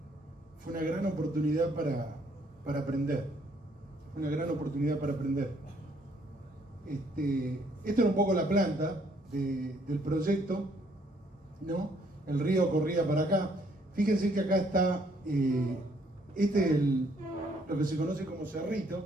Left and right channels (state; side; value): normal; both; correlation 0.66